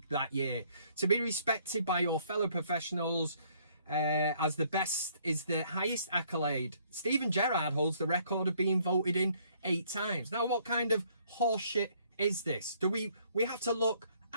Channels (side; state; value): both; inverted; correlation -0.64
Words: that year. To be respected by your fellow professionals as the best is the highest accolade. Steven Gerrard holds the record of being voted in 8 times. Now, what kind of horseshit is this? Do we have to look